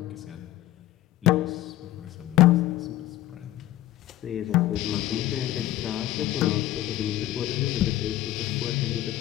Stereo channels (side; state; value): right; quieter; 14.7 dB